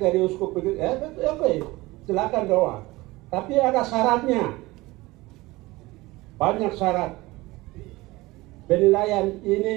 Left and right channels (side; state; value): left; quieter; 20.6 dB